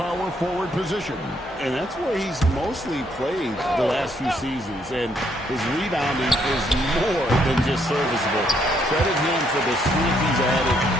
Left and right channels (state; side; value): normal; both; correlation 0.71